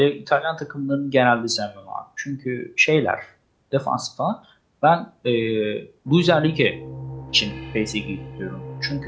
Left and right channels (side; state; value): both; identical; correlation 1.00